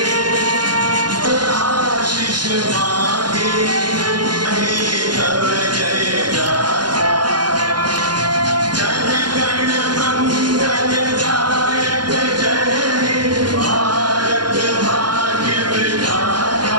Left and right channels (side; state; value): left; late; 0.70 ms